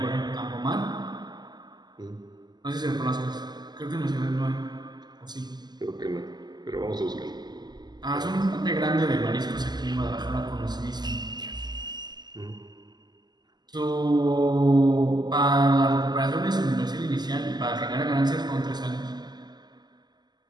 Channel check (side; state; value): left; late; 0.21 ms